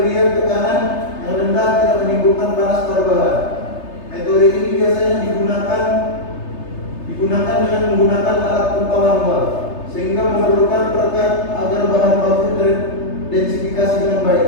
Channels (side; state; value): right; late; 3.3 ms